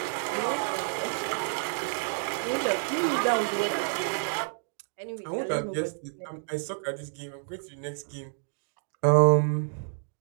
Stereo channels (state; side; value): silent; left; digital silence